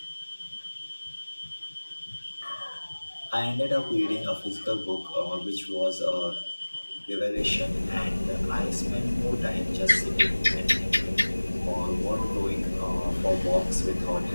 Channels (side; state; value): both; inverted; correlation -1.00